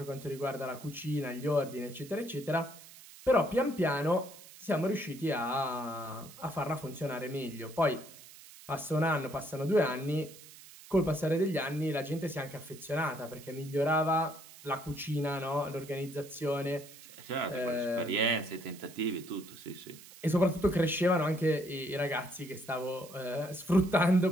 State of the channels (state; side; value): noise; right; hiss, 19 dB below the sound